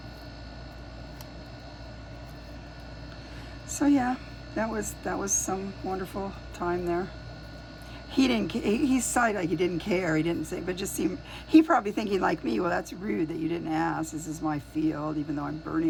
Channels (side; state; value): both; identical; correlation 1.00